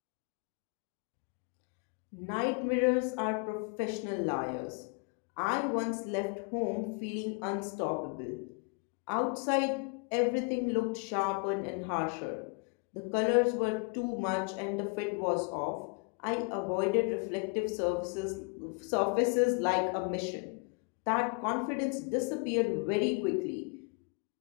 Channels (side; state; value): right; quieter; 33.9 dB